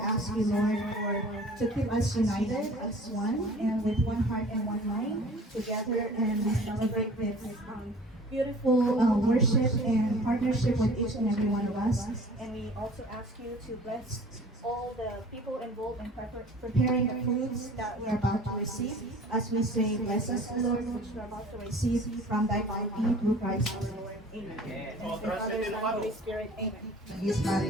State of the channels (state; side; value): normal; both; correlation 0.46